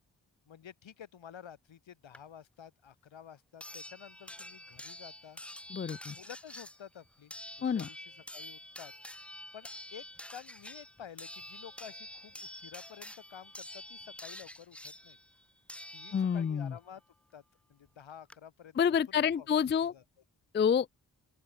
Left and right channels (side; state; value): right; quieter; 6.9 dB